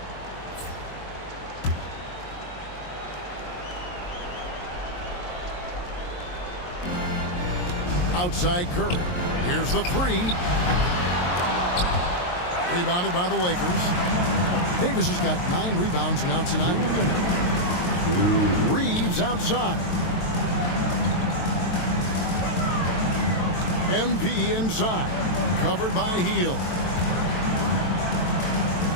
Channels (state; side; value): late; right; 23 ms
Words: Outside Curry. Here's the three. Rebounded by the Lakers. Davis has got 9 rebounds now tonight. Reeves outside. MP inside. Covered by Hield.